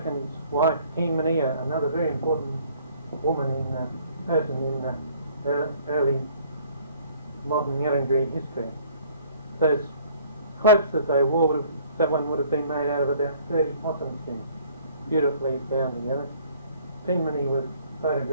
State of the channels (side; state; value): both; inverted; correlation -0.57